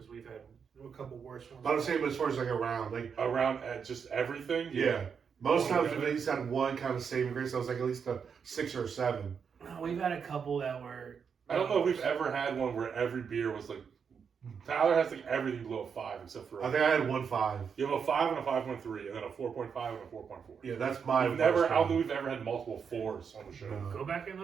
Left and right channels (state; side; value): quieter; left; 6.6 dB